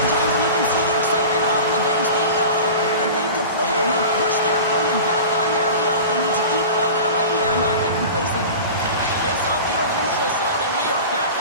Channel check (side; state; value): both; inverted; correlation -0.34